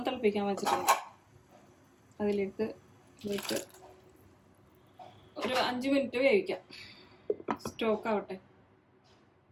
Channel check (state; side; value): identical; both; correlation 1.00